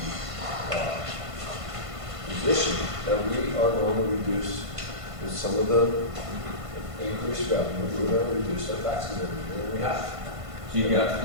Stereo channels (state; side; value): late; left; 1.5 ms